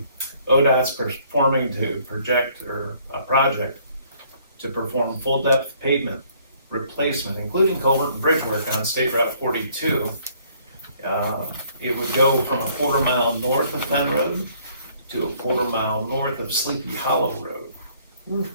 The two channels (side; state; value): both; inverted; correlation -0.62